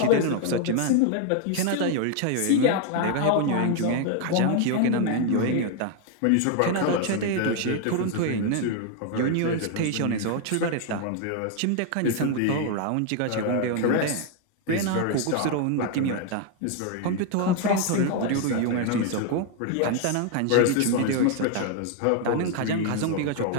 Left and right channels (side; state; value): both; different; correlation 0.00